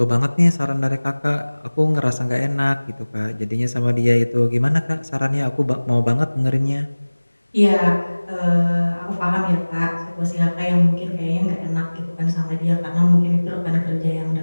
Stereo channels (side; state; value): both; inverted; correlation -1.00